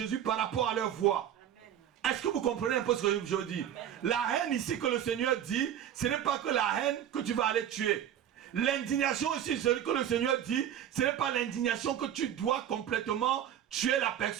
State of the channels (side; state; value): left; quieter; 10.2 dB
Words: par rapport à leurs voix. Est-ce que vous comprenez un peu ce que je veux dire? La haine ici que le Seigneur dit, ce n'est pas que la haine que tu vas aller tuer. L'indignation ici, ce que le Seigneur dit, ce n'est pas l'indignation que tu dois complètement tuer la